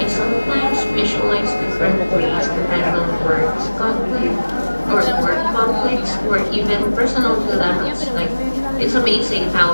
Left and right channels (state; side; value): inverted; both; correlation -1.00